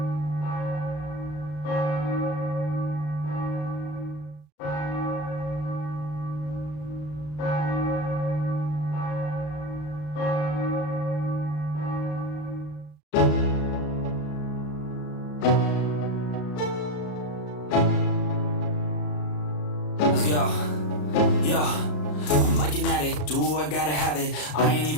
Let's go. Yo, I'm like an addict, do I gotta have it. I ain't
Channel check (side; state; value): right; late; 33 ms